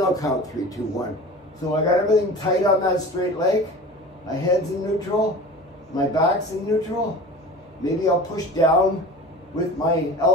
count 3, 2, 1. So I got everything tight on that straight leg. My head's in neutral. My back's in neutral. Maybe I'll push down with my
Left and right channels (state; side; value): normal; both; correlation 0.37